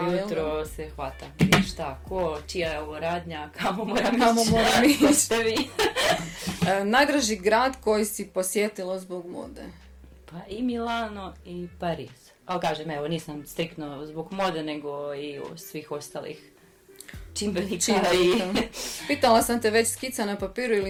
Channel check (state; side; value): identical; both; correlation 1.00